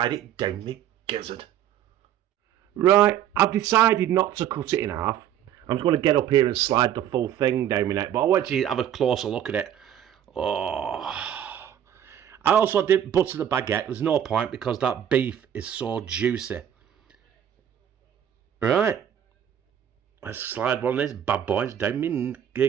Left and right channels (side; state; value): left; quieter; 10.4 dB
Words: it down my gizzard. Right, I've decided not to cut it in half. I'm just going to get up here and slide the full thing down my neck, but I want you to have a closer look at it. Oh, I also did butter the baguette. There's no point because that beef is so juicy. Right. Let's slide one of these bad boys down my